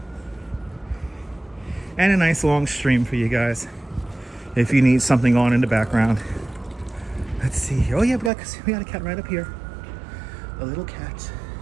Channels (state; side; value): drops out; left; at 8.3 s